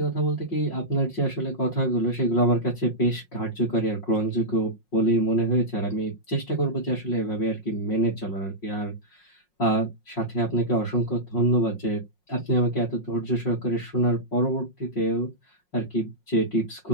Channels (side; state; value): right; late; 5.5 ms